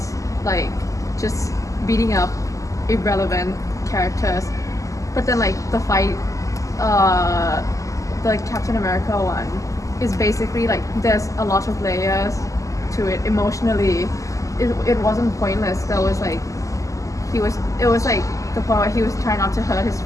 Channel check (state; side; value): late; right; 0.16 ms